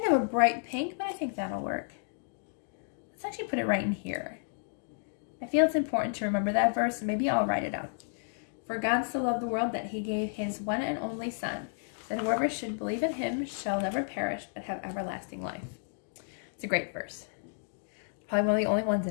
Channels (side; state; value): right; silent; digital silence